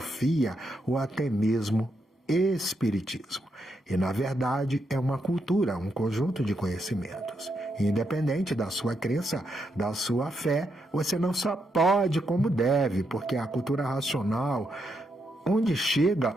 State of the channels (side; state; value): both; normal; correlation 0.81